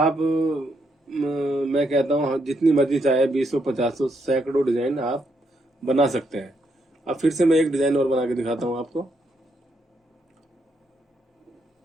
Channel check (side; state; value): both; normal; correlation 0.77